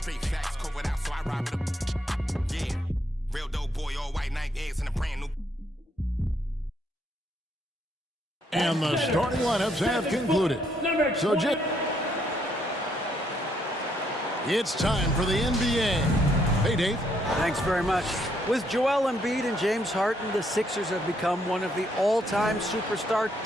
facts. Covered out, so I ride with a. Yeah. Real dope boy, all white Nike eggs and a brand new. And the starting lineups have concluded. So, it's time for the NBA. Hey, Dave. Thanks very much. With Joel Embiid and James Harden, the Sixers have become one of the all-time superstar.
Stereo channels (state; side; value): normal; both; correlation 0.72